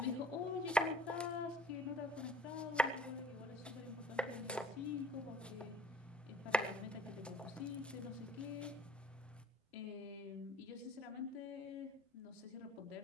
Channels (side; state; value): both; normal; correlation 0.52